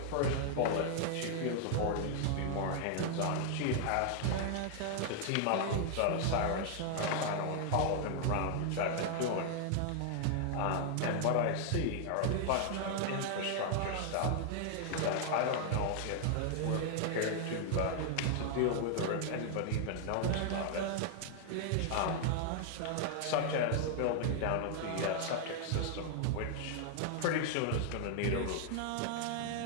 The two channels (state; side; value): different; both; correlation 0.00